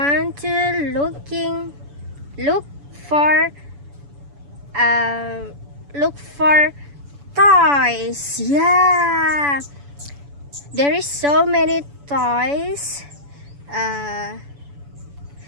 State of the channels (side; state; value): left; late; 7.0 ms